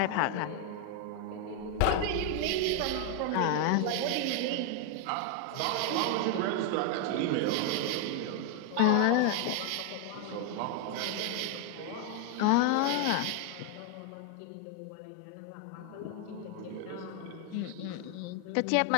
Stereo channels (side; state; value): both; different; correlation 0.00